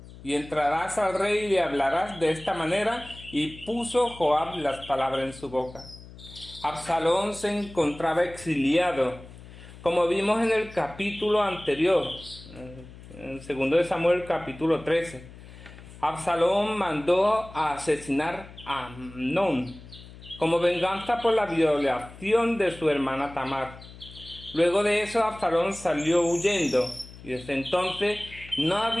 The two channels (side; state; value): left; noise; hum, 18 dB below the sound